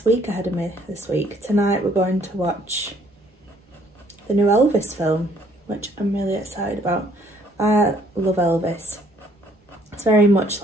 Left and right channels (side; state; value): both; normal; correlation 0.63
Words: week ahead of me this week. Tonight we're going to watch the new Elvis film, which I'm really excited about. I love Elvis. It's very much